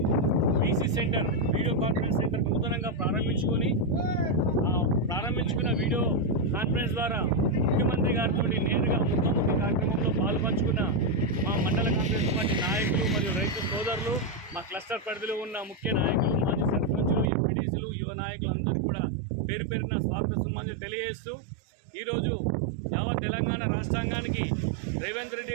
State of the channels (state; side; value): drops out; left; at 17.2 s